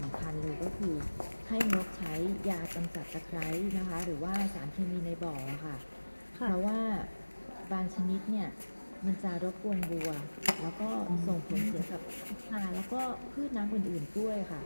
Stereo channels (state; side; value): inverted; both; correlation -1.00